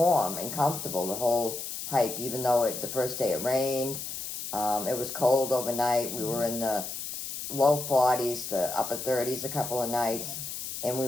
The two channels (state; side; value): noise; left; hiss, 7 dB below the sound